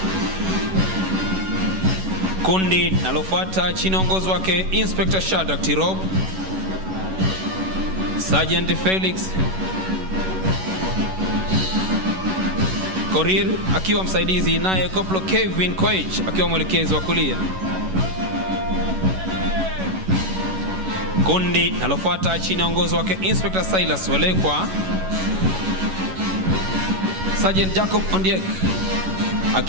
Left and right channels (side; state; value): left; late; 11 ms